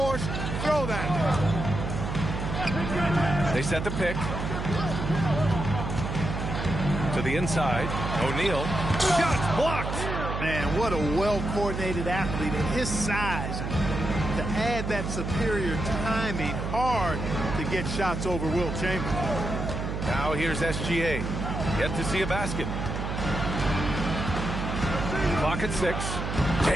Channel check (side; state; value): right; noise; hum, 4 dB below the sound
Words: throw that. They set the pick. To the inside. O'Neal. Shot blocked. Man, what a well-coordinated athlete at his size. To add that superior timing, hard to get shots over Wilt Chamberlain. Now here's SGA. Yet to see a basket. Clock at 6.